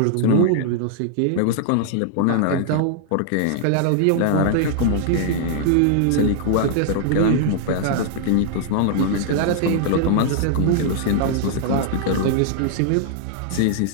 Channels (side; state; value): both; different; correlation -0.01